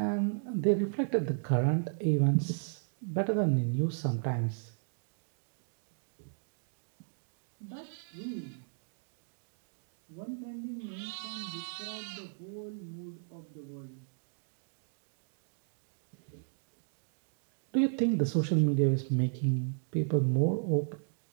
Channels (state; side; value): silent; left; digital silence